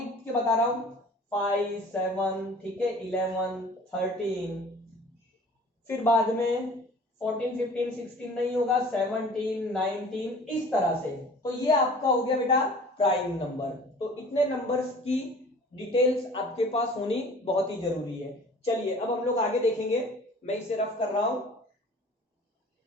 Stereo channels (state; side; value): normal; both; correlation 0.47